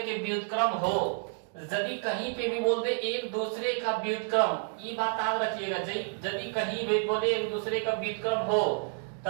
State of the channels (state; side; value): silent; left; 58 dB below the other